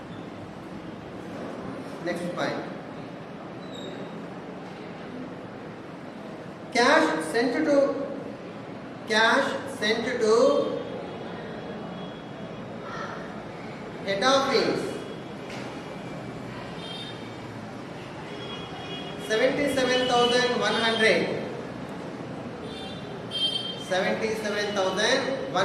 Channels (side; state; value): both; identical; correlation 1.00